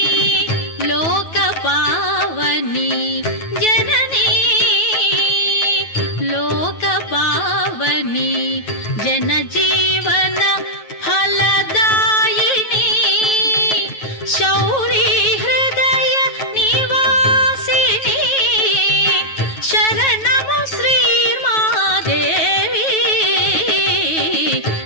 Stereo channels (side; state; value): right; late; 9.2 ms